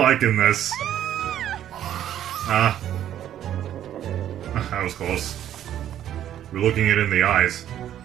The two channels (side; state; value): left; quieter; 11.2 dB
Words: this. That was close. We're looking it in the eyes.